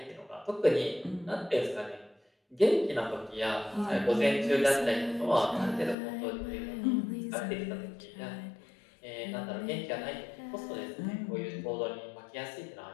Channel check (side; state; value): right; drops out; at 6.0 s